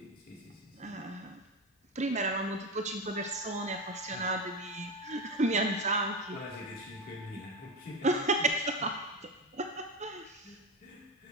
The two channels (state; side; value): normal; both; correlation 0.17